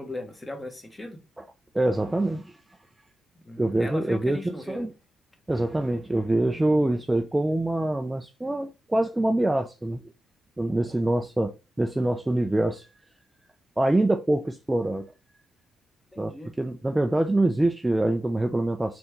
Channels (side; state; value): both; normal; correlation 0.97